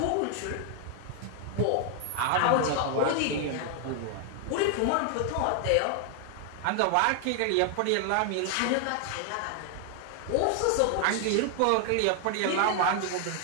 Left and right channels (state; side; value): different; both; correlation 0.00